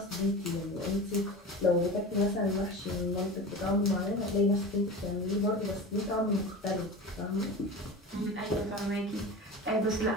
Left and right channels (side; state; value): both; normal; correlation 0.31